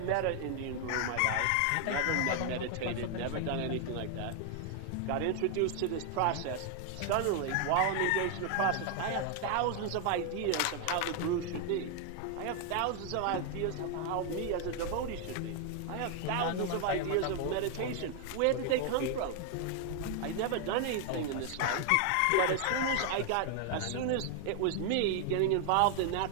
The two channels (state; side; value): different; both; correlation 0.00